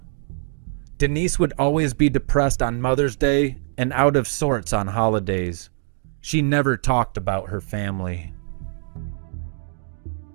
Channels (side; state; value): left; silent; digital silence